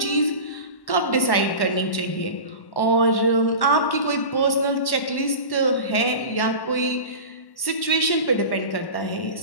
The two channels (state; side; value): late; right; 1.1 ms